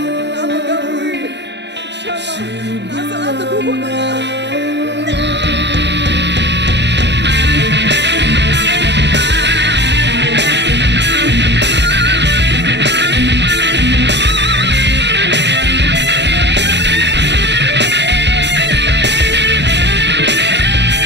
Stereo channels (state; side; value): late; left; 0.51 ms